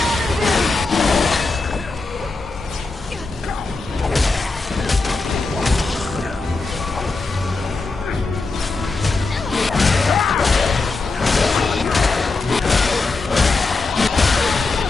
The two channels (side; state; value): right; quieter; 3.7 dB